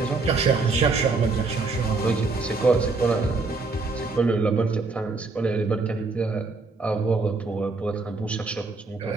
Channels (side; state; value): left; quieter; 3.9 dB